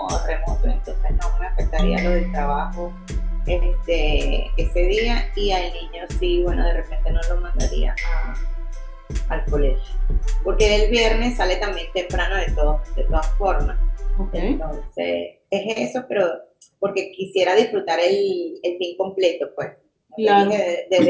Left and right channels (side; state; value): both; identical; correlation 1.00